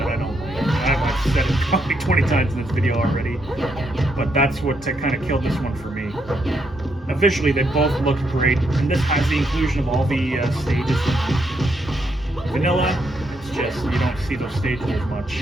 I don't like. I've said it probably 20 times in this video already, but that's what kind of killed this one for me. Now, visually, they both look great, and this has the inclusion of all the stages. Vanilla, it's just you don't see those stages as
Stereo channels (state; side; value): normal; both; correlation 0.77